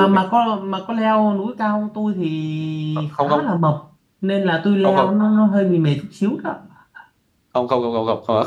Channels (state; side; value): identical; both; correlation 1.00